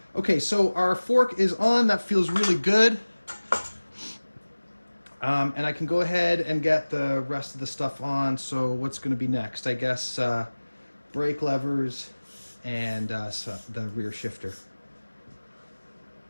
Okay, so our fork is on. That feels really good. And I can go ahead and get the rest of the stuff on. So what's going to be next? I guess brake levers and so the rear shifter.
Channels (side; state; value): both; inverted; correlation -1.00